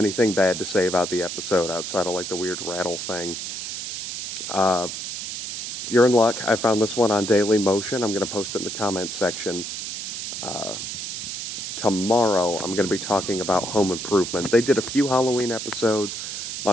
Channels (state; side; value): noise; right; hiss, 6 dB below the sound